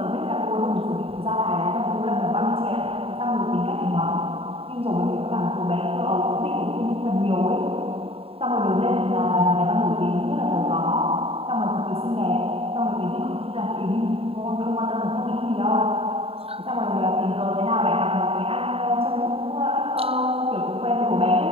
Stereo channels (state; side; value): late; left; 0.27 ms